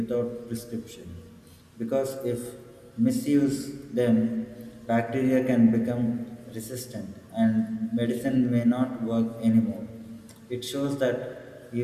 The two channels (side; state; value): both; identical; correlation 1.00